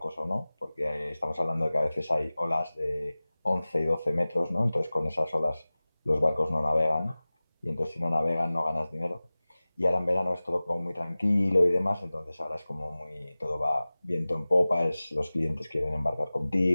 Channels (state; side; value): inverted; both; correlation -0.98